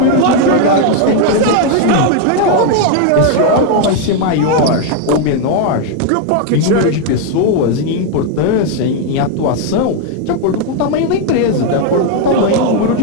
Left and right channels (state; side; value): different; both; correlation 0.01